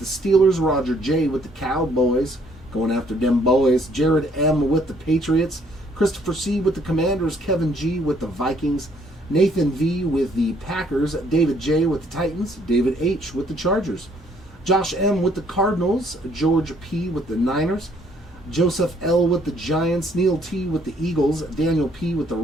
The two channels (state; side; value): normal; both; correlation 0.65